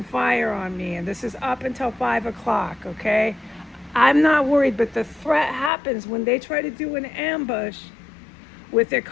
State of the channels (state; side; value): drops out; right; at 5.7 s